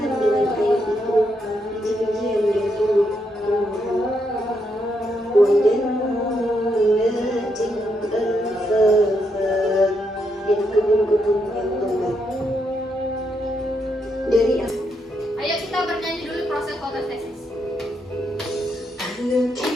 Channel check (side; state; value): both; normal; correlation 0.79